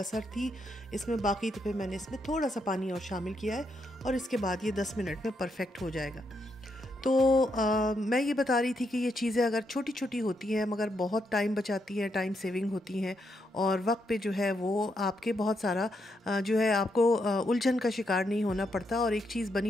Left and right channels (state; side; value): normal; both; correlation 0.79